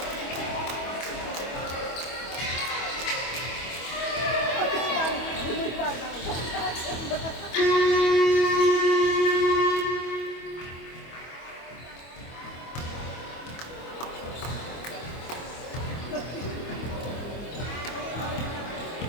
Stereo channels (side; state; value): right; late; 25 ms